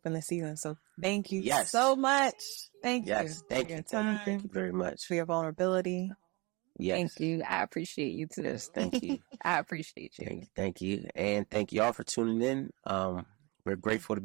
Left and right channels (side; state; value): left; quieter; 26.6 dB